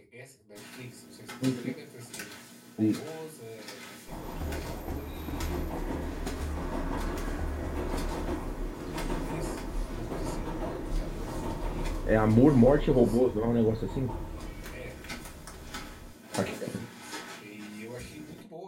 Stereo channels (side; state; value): both; identical; correlation 1.00